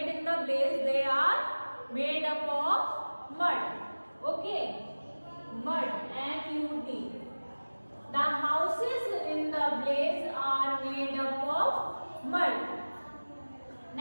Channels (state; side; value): inverted; both; correlation -1.00